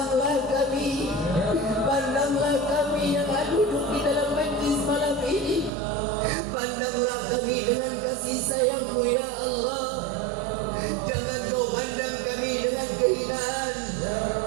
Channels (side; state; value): left; drops out; at 5.7 s